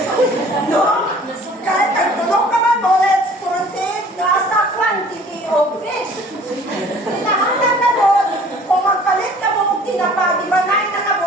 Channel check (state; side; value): normal; both; correlation 0.51